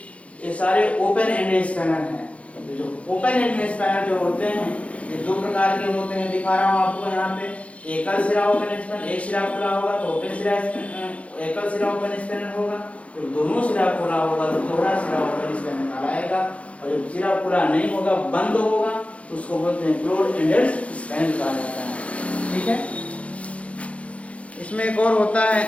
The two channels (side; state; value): right; late; 0.063 ms